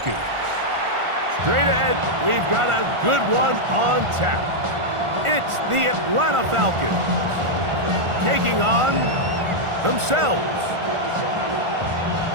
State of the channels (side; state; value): left; late; 1.4 ms